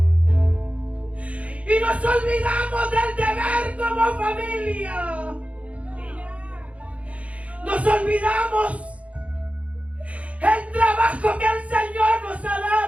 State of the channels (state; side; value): late; left; 0.064 ms